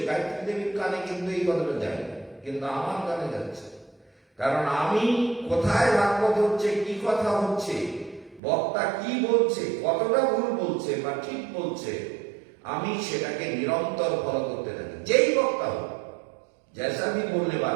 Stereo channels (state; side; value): drops out; left; at 8.4 s